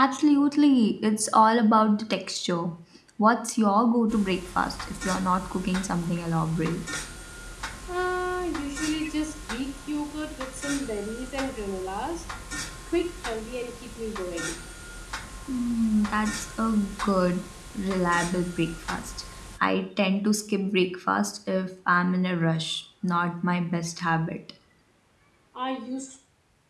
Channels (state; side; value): identical; both; correlation 1.00